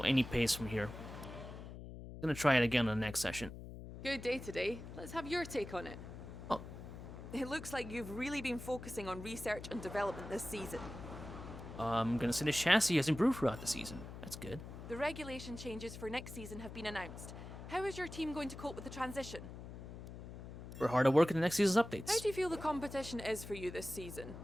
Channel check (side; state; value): left; noise; hum, 11 dB below the sound